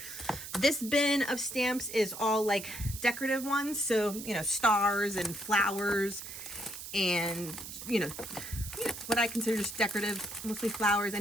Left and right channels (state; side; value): noise; right; hiss, 10 dB below the sound